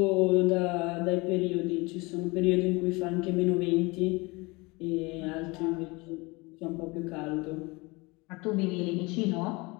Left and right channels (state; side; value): quieter; right; 25.3 dB